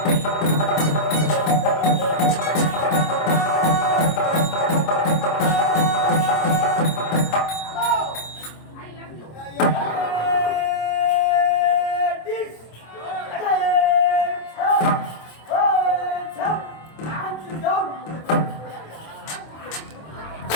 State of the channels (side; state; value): right; late; 26 ms